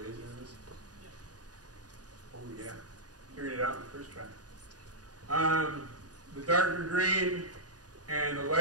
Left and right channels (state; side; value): late; left; 0.68 ms